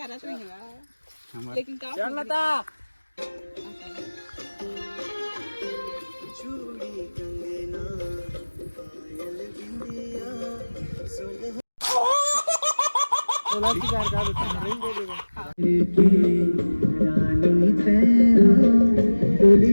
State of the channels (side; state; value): both; inverted; correlation -1.00